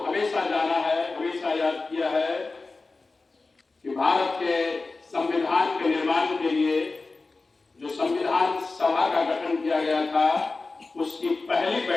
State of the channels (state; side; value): quieter; right; 3.7 dB